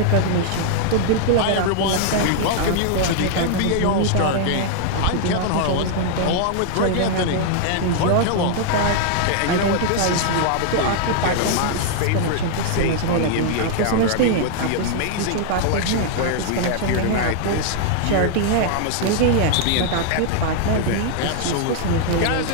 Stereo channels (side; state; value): both; different; correlation -0.01